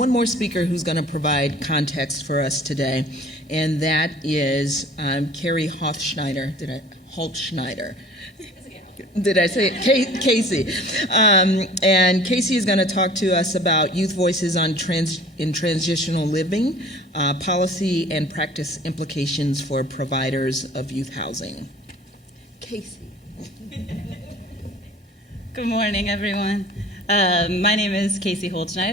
more speaker who's going to provide context for us today, and that is Carrie Holtschneider. Holtschneider. Did I say it? Casey. And Casey is going to talk to us about youth voices in transitional living, policy and practice implications for providers of youth housing. Casey. Good morning, everyone. My name is Casey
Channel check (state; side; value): normal; both; correlation 0.47